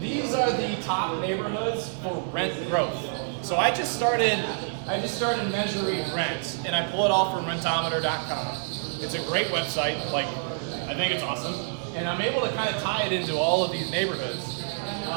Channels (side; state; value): left; silent; 60 dB below the other